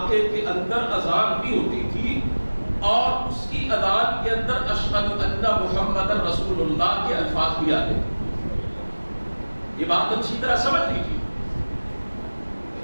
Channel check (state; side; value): inverted; both; correlation -1.00